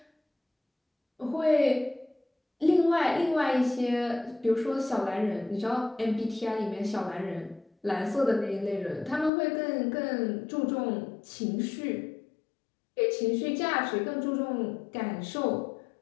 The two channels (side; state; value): right; drops out; at 9.3 s